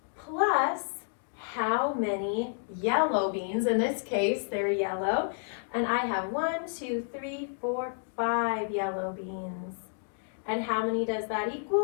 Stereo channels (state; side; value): silent; right; digital silence